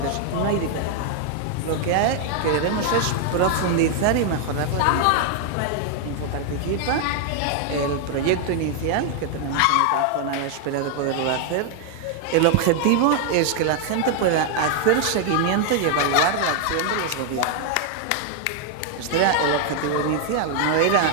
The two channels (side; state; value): both; different; correlation 0.00